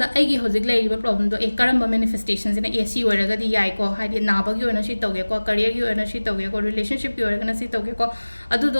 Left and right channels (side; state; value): both; inverted; correlation -1.00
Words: आइगी होजिक लेरिबा प्रॉब्लम दो ए करम्बा मैनिफेस्टेशन सिना एसी ओरगदी याइ को हाइदि नाबगी ओना सि तौगे को करियर की ओना सि तौगे को रिलेशनशिप की ओरगना सि तौगे को अदु